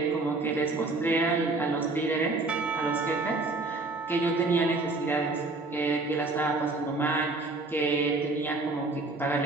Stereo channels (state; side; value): quieter; left; 3.3 dB